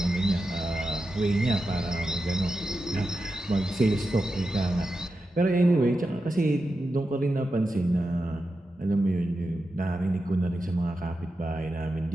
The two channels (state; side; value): normal; both; correlation 0.90